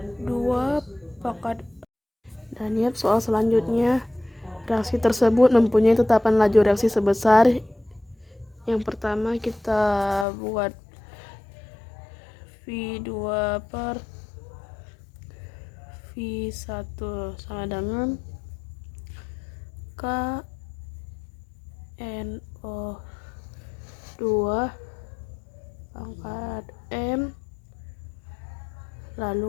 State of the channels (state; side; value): drops out; right; at 10.2 s